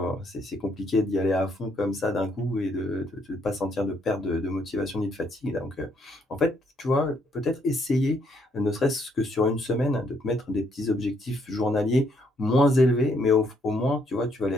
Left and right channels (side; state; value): both; normal; correlation 0.71